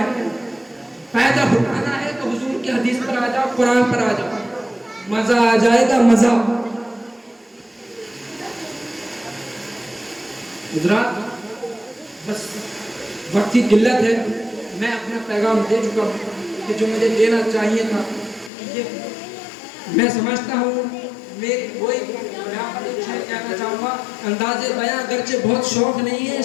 پیدا ہونا ہے تو حضور کی حدیث پر آ جاؤ، قرآن پر آ جاؤ، مزہ آ جائے گا، مزہ۔ حضرات، بس وقت کی قلت ہے، میں اپنا پیغام دے چکا ہوں کہ جو مجھے دینا چاہیے تھا یہ میں سمجھتا ہوں۔ میری وہی یہاں پر ایک شعر کہنا چاہوں گا، انداز بیاں اگرچہ بہت شوق نہیں ہے،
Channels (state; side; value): drops out; right; at 18.5 s